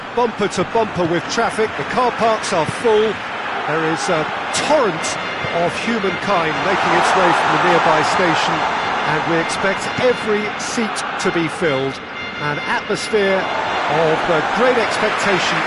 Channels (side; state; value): both; identical; correlation 1.00